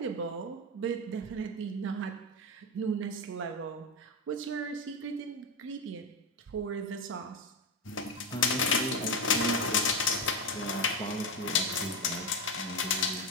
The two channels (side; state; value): both; normal; correlation 0.11